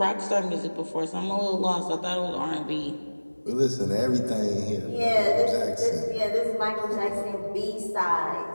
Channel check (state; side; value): inverted; both; correlation -1.00